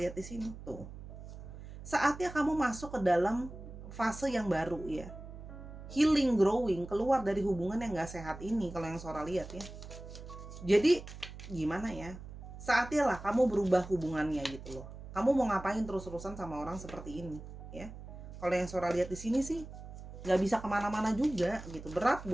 di sini tuh. Saatnya kamu masuk ke dalam fase yang baru ya. Healing, growing, keluar dari hubungan yang gak sehat ini kalau yang Sora lihat ya. Jadi gimana ya? Saatnya lah kamu berubah hubungannya gitu loh. Kamu mau ngapain terus-terusan sama orang seperti ini ya? Kalau yang Sora lihat di sini sih nggak bisa kemana-mana juga gitu, berat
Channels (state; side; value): noise; right; hum, 13 dB below the sound